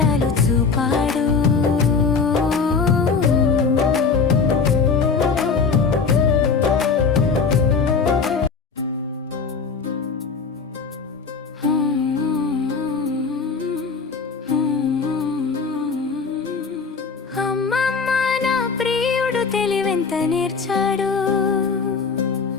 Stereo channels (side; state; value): right; quieter; 5.1 dB